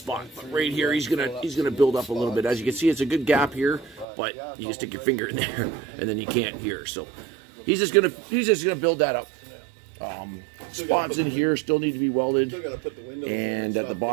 but right here he's gonna build up a little bit. As you can see, it's a good gap here, but you can stick your finger in there, and then you can't here. So he's just gonna build that up. Spots in here still need to be welded, and at the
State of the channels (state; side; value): drops out; left; at 4.0 s